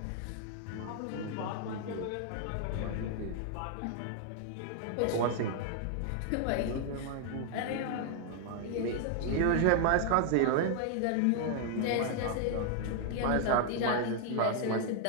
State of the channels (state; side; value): different; both; correlation 0.00